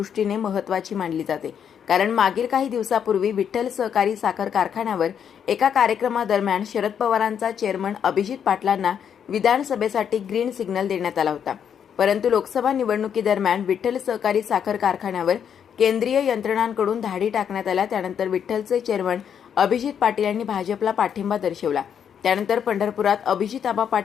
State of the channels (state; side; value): quieter; right; 8.2 dB